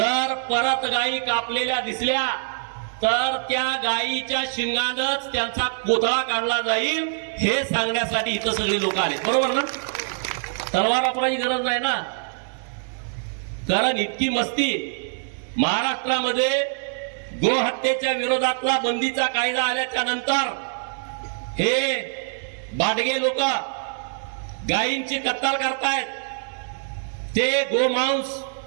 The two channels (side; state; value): left; silent; digital silence